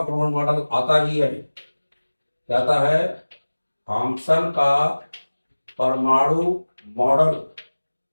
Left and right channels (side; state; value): both; inverted; correlation -1.00